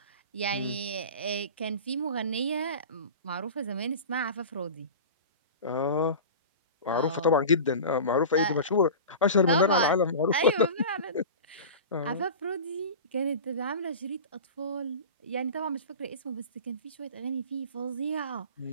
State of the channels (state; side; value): inverted; both; correlation -0.33